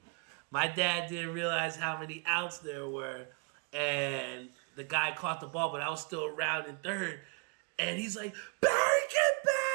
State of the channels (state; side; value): quieter; left; 35.1 dB